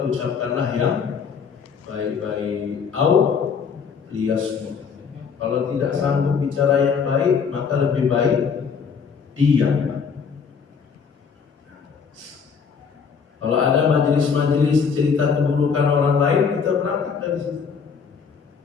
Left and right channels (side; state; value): right; quieter; 6.1 dB